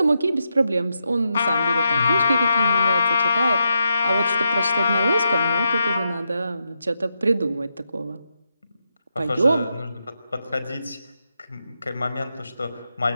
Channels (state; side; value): inverted; both; correlation -0.85